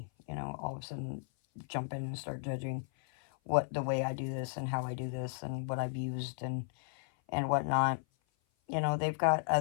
you know, all of a sudden jump in and start judging the way I do this and how I do this and what I've used and whatnot. You know, they've got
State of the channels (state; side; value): silent; right; 55 dB below the other